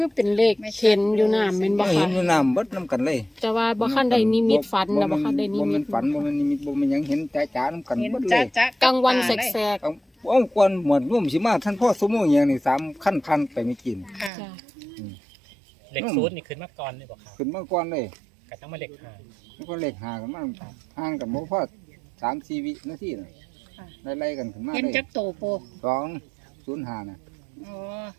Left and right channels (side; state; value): left; drops out; at 14.3 s